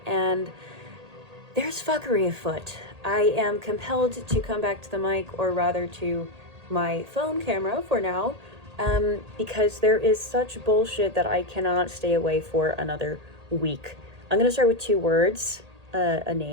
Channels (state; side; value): late; left; 1.8 ms